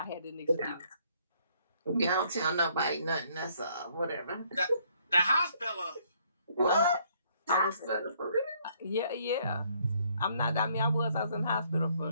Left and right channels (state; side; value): inverted; both; correlation -0.66